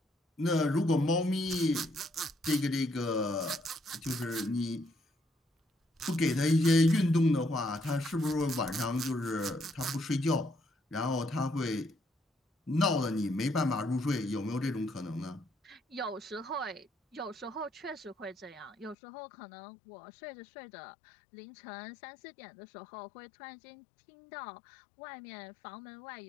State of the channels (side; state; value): right; drops out; at 18.9 s